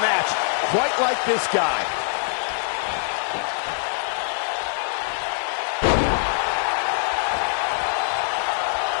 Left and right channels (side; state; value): right; silent; 63 dB below the other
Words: match quite like this guy.